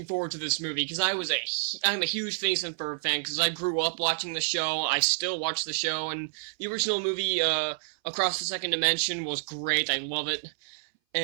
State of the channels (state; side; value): silent; left; 58 dB below the other